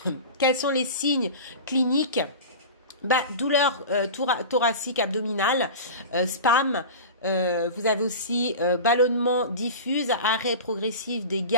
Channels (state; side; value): inverted; both; correlation -0.31